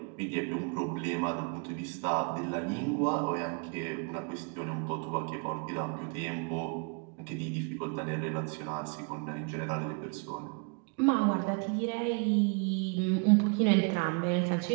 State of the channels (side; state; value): left; quieter; 35.9 dB